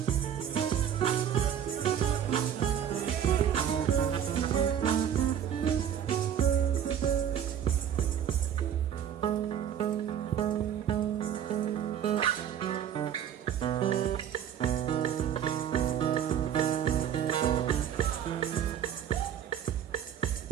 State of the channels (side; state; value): left; quieter; 9.3 dB